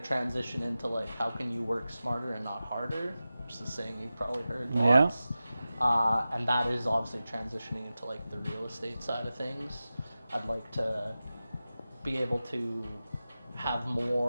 into like how can you work smarter and not harder, which is a saying you've probably heard Yeah. lots. And that is obviously transitioning into like the real estate side of things. I'd like to be able to have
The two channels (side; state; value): both; inverted; correlation -0.95